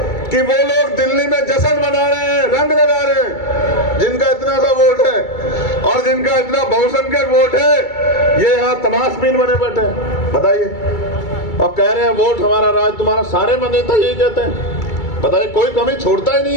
कि वो लोग दिल्ली में जश्न मना रहे हैं, रंग लगा रहे हैं। जिनका इतना सा वोट है और जिनका इतना बहुसंख्यक वोट है ये यहाँ तमाशबीन बने बैठे हैं बताइए, और कह रहे हैं वोट हमारा राज तुम्हारा। सारे नेता यही कहते हैं बताइए, कोई कमी छोड़ता ही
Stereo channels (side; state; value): right; late; 2.3 ms